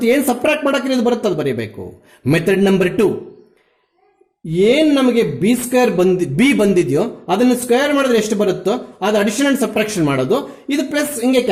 ಏನ್ ಸಬ್ಟ್ರಾಕ್ಟ್ ಮಾಡಕ್ಕೆ ಇದು ಬರುತ್ತೆ ಅದು ಬರೀಬೇಕು. ಮೆಥಡ್ ನಂಬರ್ 2, ಏನ್ ನಮಗೆ ಬಿ ಸ್ಕ್ವೇರ್ ಬಿ ಬಂದಿದೆಯೋ ಅದನ್ನ ಸ್ಕ್ವೇರ್ ಮಾಡಿದ್ರೆ ಎಷ್ಟು ಬರುತ್ತೋ ಅದು ಅಡಿಷನ್ ಅಂಡ್ ಸಬ್ಟ್ರಾಕ್ಷನ್ ಮಾಡೋದು, ಇದು ಪ್ಲಸ್ ಹಿಂಗೆ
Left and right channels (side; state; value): both; identical; correlation 1.00